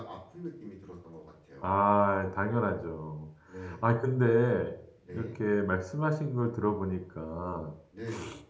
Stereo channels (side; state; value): both; identical; correlation 1.00